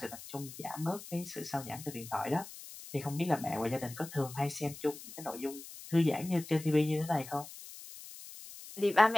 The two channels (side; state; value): left; noise; hiss, 14 dB below the sound